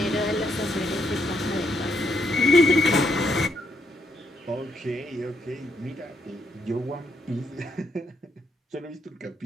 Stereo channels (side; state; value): both; normal; correlation 0.76